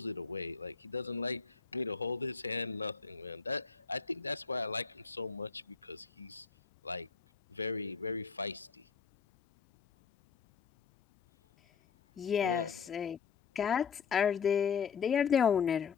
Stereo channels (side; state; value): right; quieter; 6.1 dB